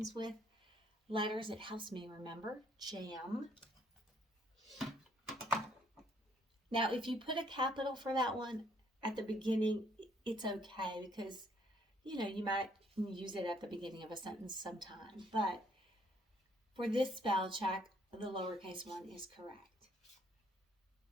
with letters, it helps me remember. Jam. Now if you put a capital for that one at the beginning, it's okay because, you know, you might use it at the beginning of a sentence sometime, but for this spell check, the lowercase one is correct.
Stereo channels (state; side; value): normal; both; correlation 0.66